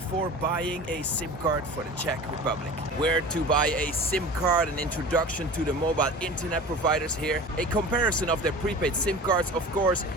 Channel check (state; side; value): normal; both; correlation 0.37